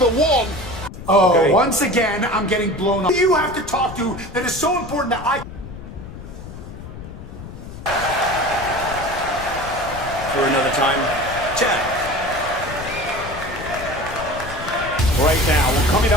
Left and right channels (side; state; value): left; noise; rumble, 12 dB below the sound